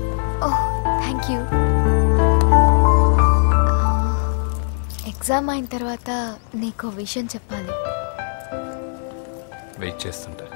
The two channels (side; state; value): right; silent; 63 dB below the other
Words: Oh, thank you. Exam అయిన తర్వాత నీకు విషయం చెప్పాలి. వెయిట్ చేస్తుంటా.